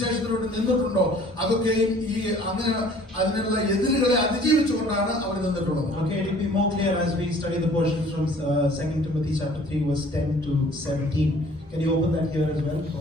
നിന്നിട്ടുണ്ടോ അതൊക്കെയും ഈ അങ്ങനെ അതിനുള്ള എതിരുകളെ അതിജീവിച്ചുകൊണ്ടാണ് അവർ നിന്നിട്ടുള്ളത്. Okay, it will be more clear as we study the portion from 2 Timothy chapter 3 verse 10 to 17. Can you open that here as well?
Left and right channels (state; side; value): normal; both; correlation 0.53